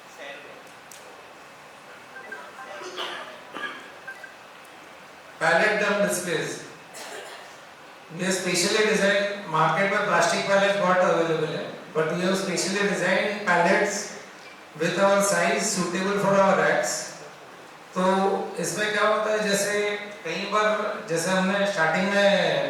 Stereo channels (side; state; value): both; identical; correlation 1.00